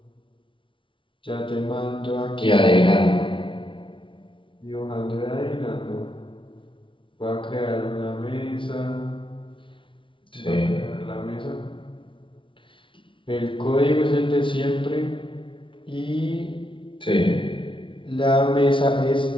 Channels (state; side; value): late; right; 0.25 ms